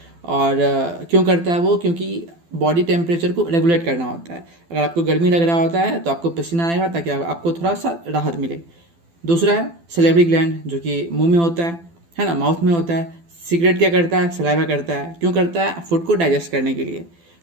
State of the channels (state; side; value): late; left; 12 ms